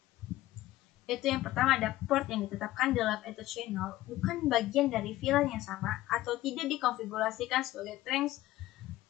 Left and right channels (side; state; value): right; quieter; 16.2 dB